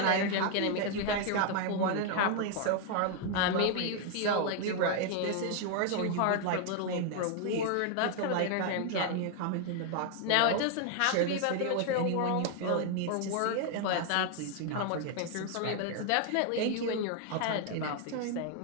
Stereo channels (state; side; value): different; both; correlation 0.00